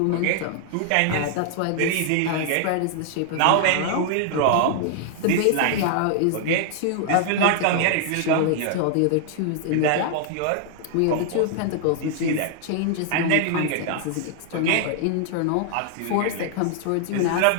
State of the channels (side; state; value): both; different; correlation -0.01